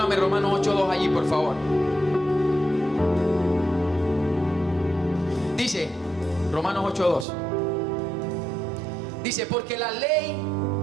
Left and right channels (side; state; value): left; drops out; at 7.2 s